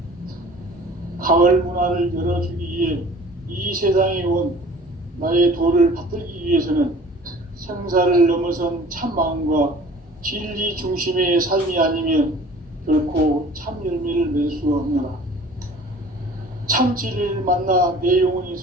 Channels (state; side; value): normal; both; correlation 0.47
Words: 가을 문화를 열어주기 위해 이 세상에 온 나의 도를 받들기 위해서는 생사를 넘어선 참 마음과 진리 중심의 삶이 아니면 결코 참 열매를 맺을 수 없노라. 참 진리를 만나 내 영혼이